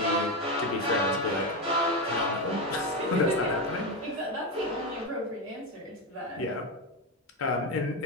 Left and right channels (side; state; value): both; normal; correlation 0.12